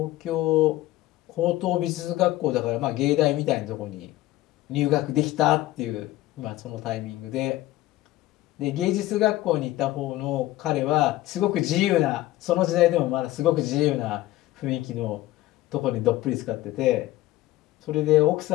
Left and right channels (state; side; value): quieter; right; 16.2 dB